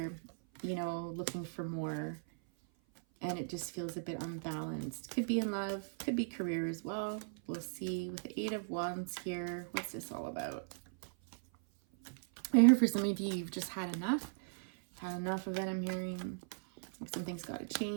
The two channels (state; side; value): silent; left; 53 dB below the other